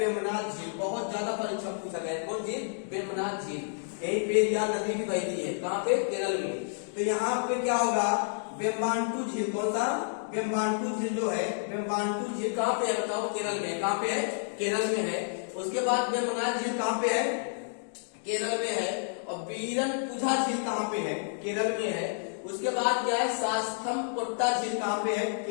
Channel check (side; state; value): right; silent; digital silence